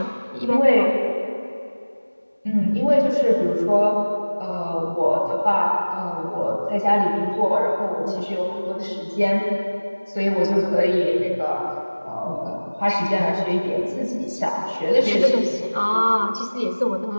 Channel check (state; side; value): inverted; both; correlation -1.00